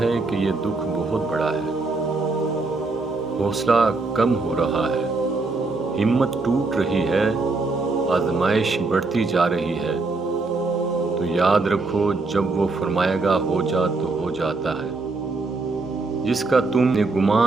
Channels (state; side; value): quieter; left; 3.6 dB